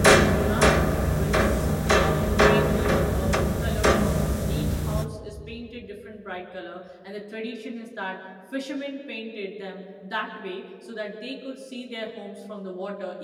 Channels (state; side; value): identical; both; correlation 1.00